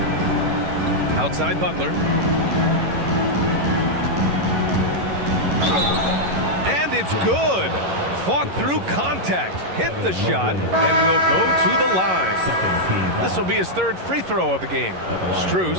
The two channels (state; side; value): late; left; 11 ms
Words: Outside Butler. And it's good. Fought through contact, hit the shot, and will go to the line. This will be his 3rd free throw of the game.